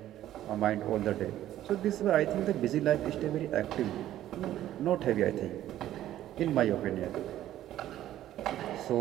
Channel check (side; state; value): left; quieter; 12.9 dB